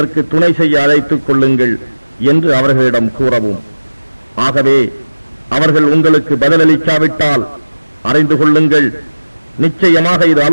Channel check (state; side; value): inverted; both; correlation -1.00